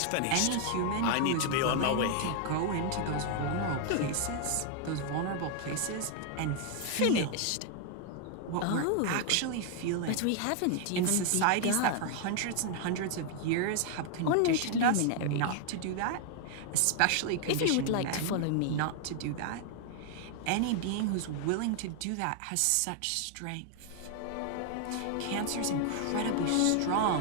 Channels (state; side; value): different; both; correlation 0.00